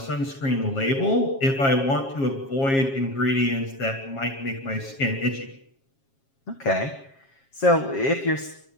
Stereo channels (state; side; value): late; right; 7.4 ms